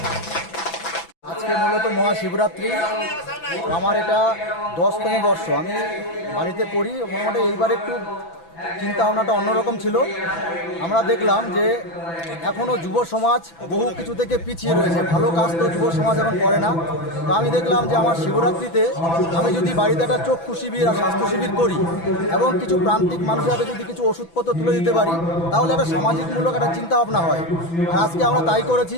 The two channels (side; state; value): right; late; 6.0 ms